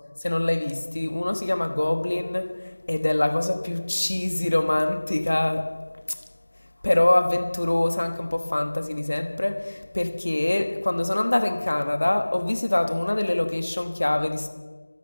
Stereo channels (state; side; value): inverted; both; correlation -1.00